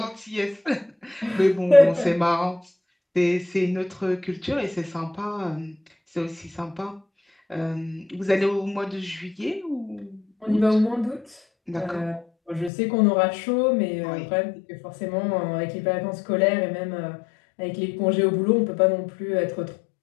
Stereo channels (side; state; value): right; drops out; at 12.7 s